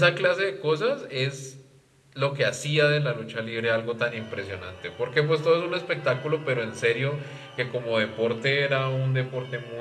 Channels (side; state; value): both; identical; correlation 1.00